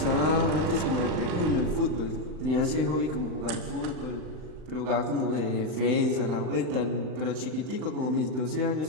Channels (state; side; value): late; left; 39 ms